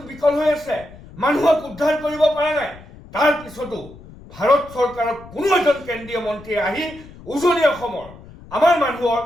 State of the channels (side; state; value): left; noise; rumble, 19 dB below the sound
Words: বিকল হৈ আছে, মানুহক উদ্ধাৰ কৰিব পৰা নাই। তাৰ পিছতো ভাৰত চৰকাৰৰ কোনো এজন কেন্দ্ৰীয় মন্ত্ৰীয়ে আহি উজনি অসমৰ আমাৰ মানুহৰ